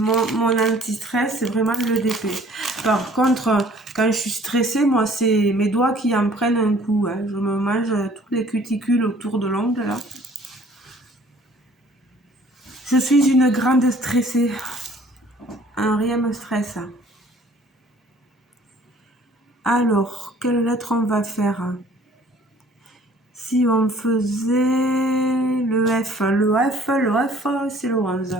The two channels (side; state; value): both; normal; correlation 0.55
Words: anti-stress, c'est vraiment le DP. Par contre, quand je suis stressée, moi, c'est mes doigts qui en prennent un coup. Hein. Je me mange toutes les cuticules autour de l'ongle, là. Je suis une grande stressée. Rien me stresse. Alors, quelle lettre on va faire? Si on faisait le F, c'est le 11.